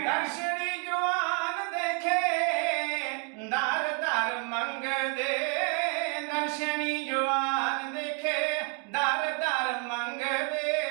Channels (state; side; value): quieter; left; 37.8 dB